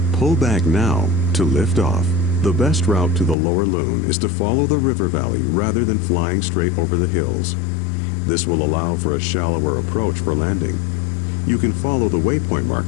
Pull back now to lift off. The best route to the Lower Loon is to follow the river valley rather than flying straight over the hills. This will allow for a shallower approach for landing. You can follow the waypoint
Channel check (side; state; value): right; drops out; at 3.4 s